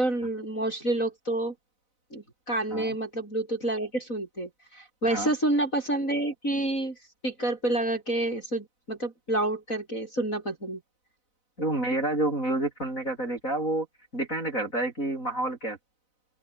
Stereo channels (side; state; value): right; late; 4.0 ms